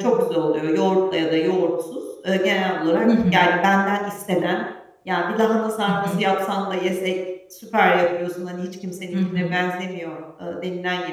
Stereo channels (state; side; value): identical; both; correlation 1.00